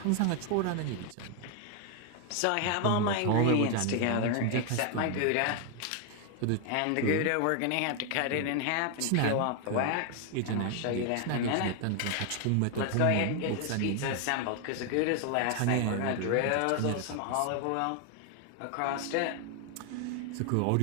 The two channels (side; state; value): both; different; correlation 0.01